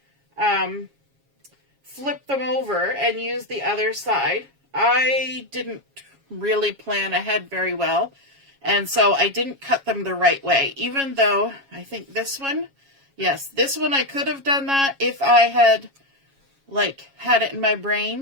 flip them over and use the other side. I didn't really plan ahead very well, and so I didn't cut them the right way, even though I think this one, yes, this one I could have done that if I had had it in my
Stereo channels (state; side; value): late; left; 7.3 ms